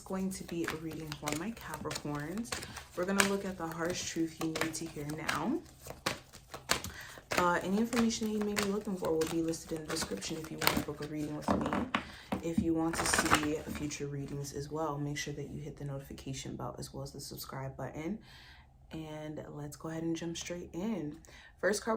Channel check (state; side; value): identical; both; correlation 1.00